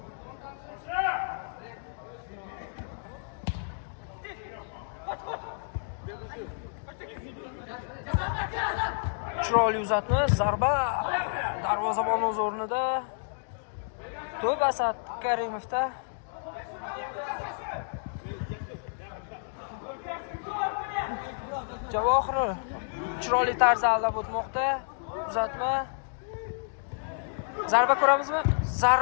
Chiroyli uzatma, zarba darvozabon o'z o'rnida. To'p Asad Karimovda. Javohir chiroyli tarzda aldab o'tmoqda. Uzatma. Zarba ko'ramizmi?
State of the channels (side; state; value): right; silent; digital silence